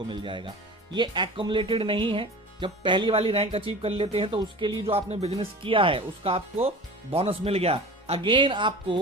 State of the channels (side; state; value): both; normal; correlation 0.36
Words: मिल जाएगा। ये एक्युमुलेटेड नहीं है, जब पहली वाली रैंक अचीव कर लेते हैं तो उसके लिए जो आपने बिजनेस किया है उसका आपको बोनस मिल गया। अगेन